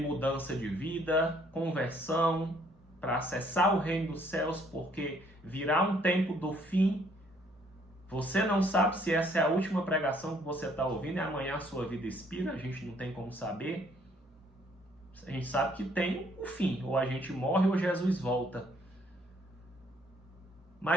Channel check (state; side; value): normal; both; correlation 0.65